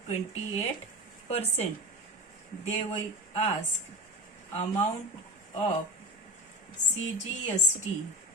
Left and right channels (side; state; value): both; normal; correlation 0.29